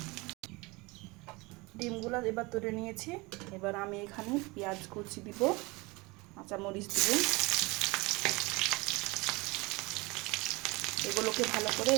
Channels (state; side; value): quieter; left; 24.6 dB